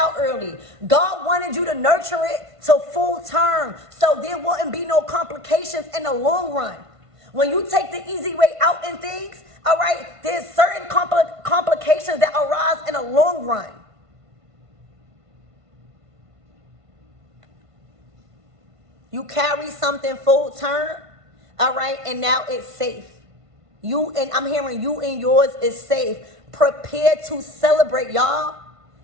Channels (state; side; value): late; left; 1.5 ms